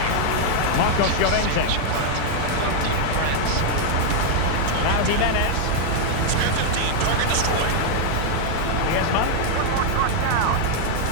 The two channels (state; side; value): different; both; correlation 0.00